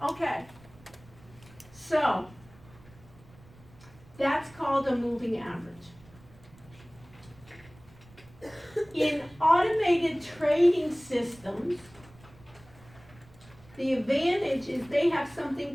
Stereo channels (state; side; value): noise; right; rumble, 24 dB below the sound